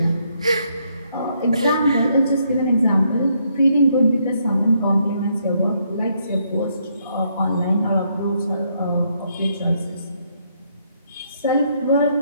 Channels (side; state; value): both; inverted; correlation -0.73